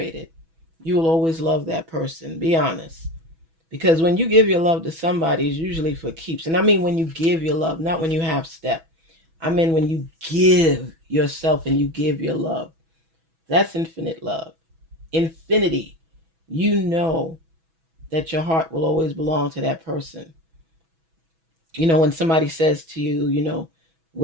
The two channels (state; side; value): late; left; 6.1 ms